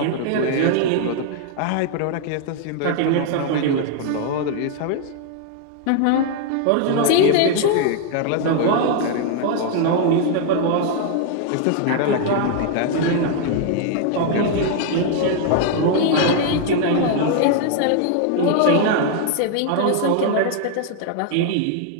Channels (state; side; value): different; both; correlation 0.00